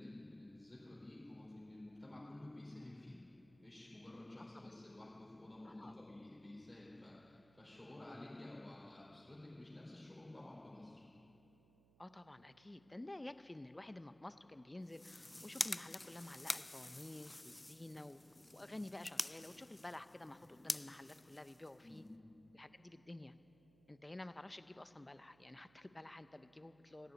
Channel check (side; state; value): right; noise; hum, 23 dB below the sound